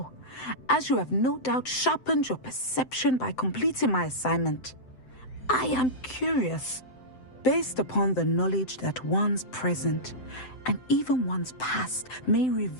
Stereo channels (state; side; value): late; right; 7.8 ms